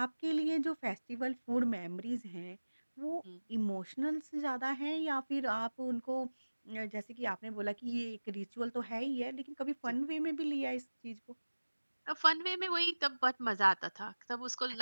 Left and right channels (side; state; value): both; inverted; correlation -1.00